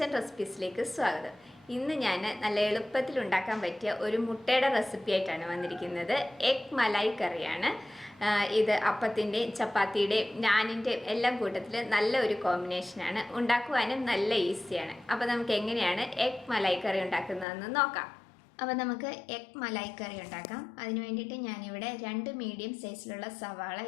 റെസിപ്പീസിലേക്ക് സ്വാഗതം. ഇന്ന് ഞാൻ നല്ല എളുപ്പത്തിൽ ഉണ്ടാക്കാൻ പറ്റിയ ഒരു മുട്ടയുടെ റെസിപ്പി ആയിട്ടാണ് വന്നിരിക്കുന്നത്. എഗ് മലായി കറിയാണ് ഇത്. അപ്പത്തിൻ്റെയും ചപ്പാത്തിയുടെയും നാനിൻ്റെയും എല്ലാം കൂട്ടത്തിൽ നല്ല ഒരു കോമ്പിനേഷനാണ്. ഉണ്ടാക്കുവാനും നല്ല ഈസിയാണ്. അപ്പോൾ നമുക്ക് എങ്ങനെയാണ് എഗ് മലായി കറി ഉണ്ടാക്കുന്നതെന്ന് നോക്കാം. അപ്പോൾ നമുക്ക് എഗ് മലായി കറി ഉണ്ടാക്കാം. അതിന് വേണ്ടിയിട്ട് ഞാനിവിടെ 2 മീഡിയം സൈസിലുള്ള സവാള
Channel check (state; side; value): drops out; right; at 17.4 s